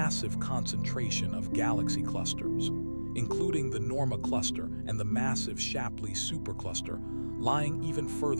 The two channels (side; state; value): both; inverted; correlation -1.00